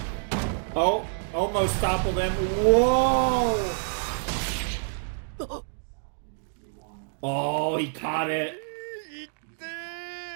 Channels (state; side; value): silent; left; digital silence